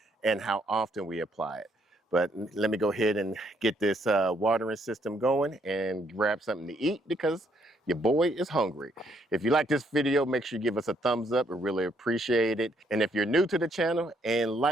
and how often we apply it. But let me go ahead and get this watering system going and grab something to eat because your boy is hungry. If you like this video, make sure you give us a thumbs up. We really appreciate it. And if you're new to the channel and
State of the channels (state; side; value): normal; both; correlation 0.70